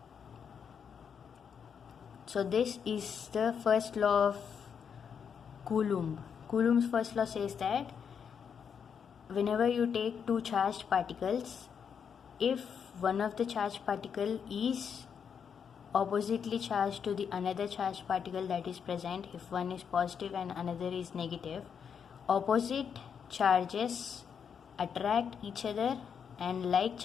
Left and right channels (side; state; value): right; quieter; 7.1 dB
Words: So this is the first law of Coulomb. Coulomb's first law says that whenever you take two charged particles, if one of the charged particle is oppositely charged to the another charged particle that is present, if one is positive and another is negative, opposite charges attract each other and like